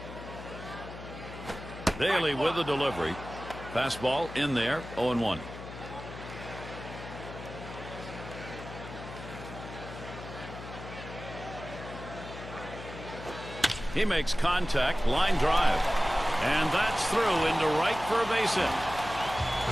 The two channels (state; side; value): noise; left; hum, 12 dB below the sound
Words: Daly with the delivery. Fastball in there, 0-1. He makes contact, line drive. And that's through into right for a base hit.